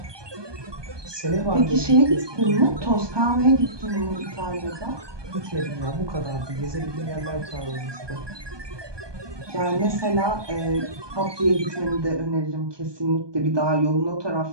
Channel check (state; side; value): late; left; 1.2 ms